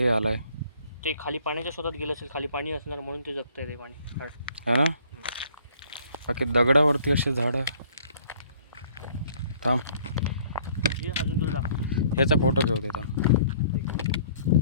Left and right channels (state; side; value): inverted; both; correlation -0.58